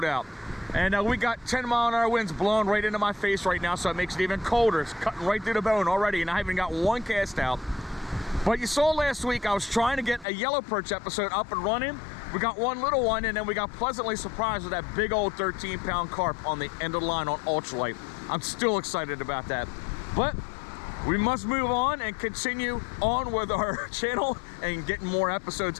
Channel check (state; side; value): drops out; right; at 10.2 s